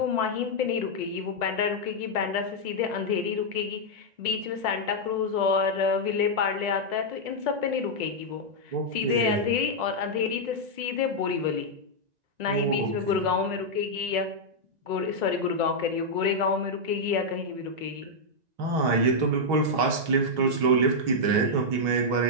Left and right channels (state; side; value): late; left; 2.0 ms